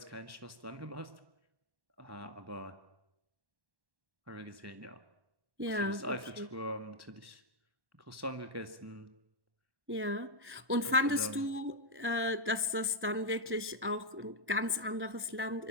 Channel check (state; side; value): late; left; 1.1 ms